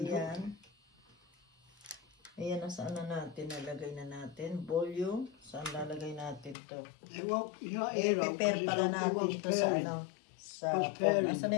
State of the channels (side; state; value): right; drops out; at 6.6 s